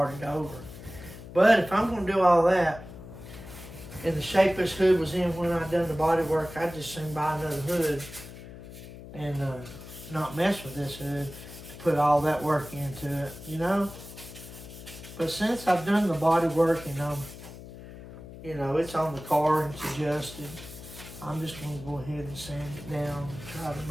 over. But if I'm going to do all that, in the shape this hood was in when I done the body work, I'd just soon buy another hood and not mess with this hood to put all that work into it, you know. But since I've done the body work and you know, it's on the car and it's adjusted, I'm just going to go ahead and sand it down and try to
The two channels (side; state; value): left; noise; hum, 14 dB below the sound